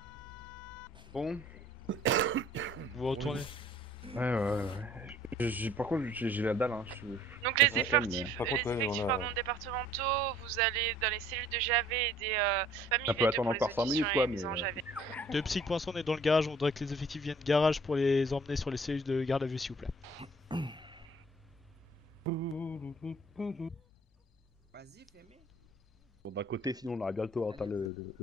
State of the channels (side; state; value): both; normal; correlation 0.55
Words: Bon. Vous retournez. Ouais. Par contre, j'ai la dalle. Hein. Donc les effectifs, départementaux, vous allez dans les cellules de JAV et des familles Ça peut V2 attendre pour les encore 5 auditions minutes, et quoi, les mises en mais- JAV. De Psych pour l'instant on est dans le garage, on voudrait que les effectifs viennent garage pour les emmener sur les cellules de garde à vue s'il vous plaît. Vas-y, fais-moi. Bon, d'un côté, sinon, on aurait bientôt atteint le